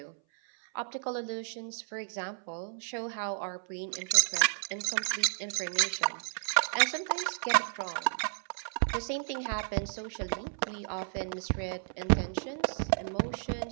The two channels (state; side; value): silent; left; 56 dB below the other